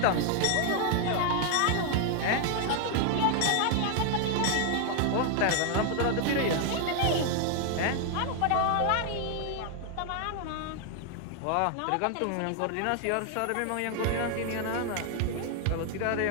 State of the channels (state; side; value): different; both; correlation 0.00